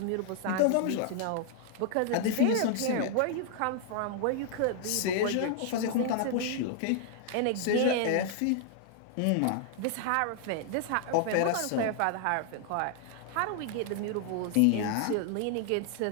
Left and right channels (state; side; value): different; both; correlation 0.00